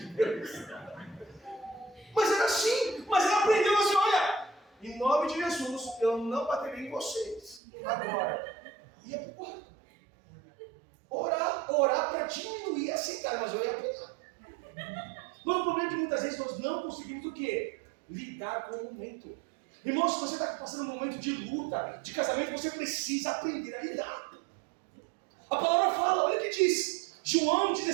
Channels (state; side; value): drops out; left; at 7.6 s